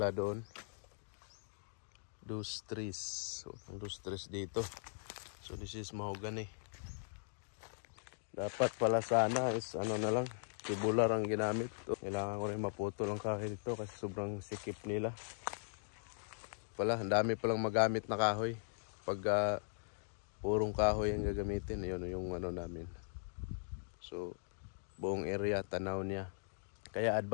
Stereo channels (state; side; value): silent; right; digital silence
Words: doon. Dos trees. So ang dos trees dito. So this is mahogany. Dapat pala sana is ano na lang, tubular ang ginamit. Kailangan ko rin maputol ang kahoy dito kasi sobrang sikip nila. Pala, ang dami palang magamit na kahoy. Pag purong kahoy ang gagamitin, yun yung ano namin. So buong area tanaw niya. Kaya